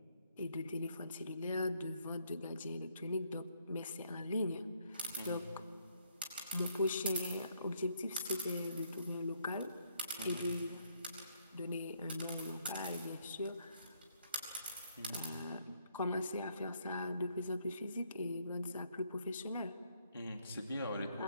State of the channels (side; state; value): both; inverted; correlation -0.71